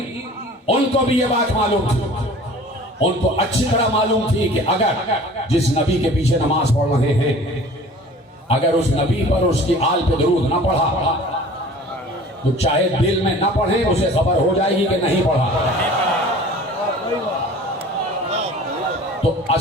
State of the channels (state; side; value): normal; both; correlation 0.45